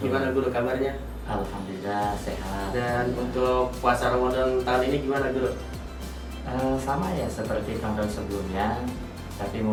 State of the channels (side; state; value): both; identical; correlation 1.00